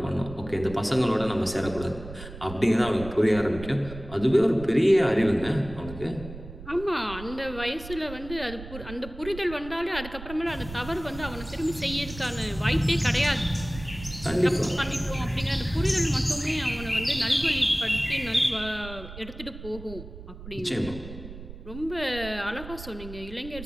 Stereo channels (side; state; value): right; noise; rumble, 13 dB below the sound